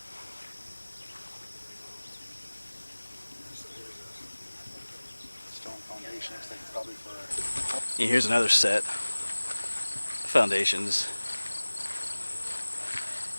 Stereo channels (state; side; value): inverted; both; correlation -1.00